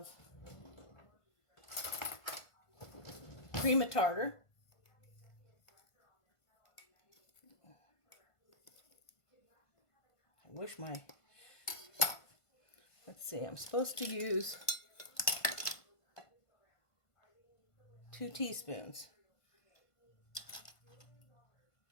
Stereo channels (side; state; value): right; late; 1.5 ms